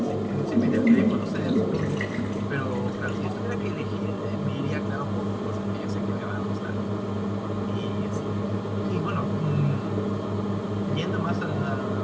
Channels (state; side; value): identical; both; correlation 1.00